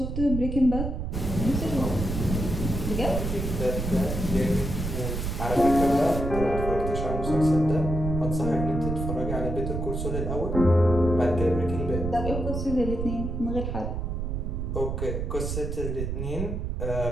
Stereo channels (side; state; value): right; noise; rumble, 3 dB below the sound